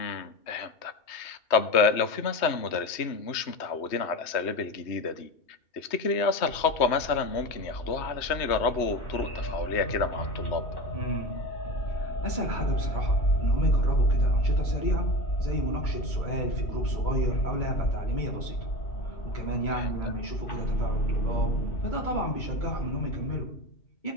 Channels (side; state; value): right; late; 3.2 ms